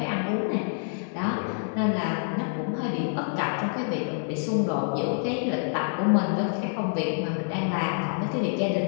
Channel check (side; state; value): right; silent; digital silence